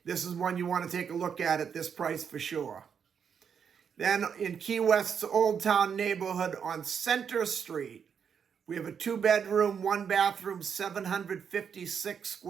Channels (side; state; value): left; quieter; 7.2 dB